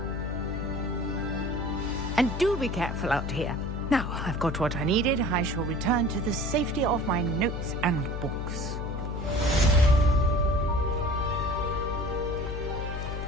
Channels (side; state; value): left; noise; hum, 4 dB below the sound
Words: And do be careful out here. Now, I've got what I needed. I shall return to the safety of my notes and books.